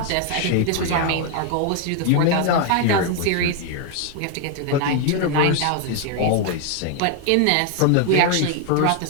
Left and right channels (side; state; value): both; different; correlation 0.01